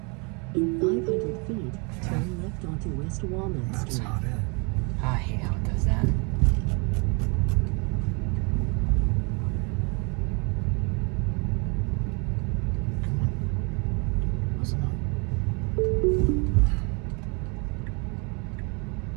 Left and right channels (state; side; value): quieter; left; 32.9 dB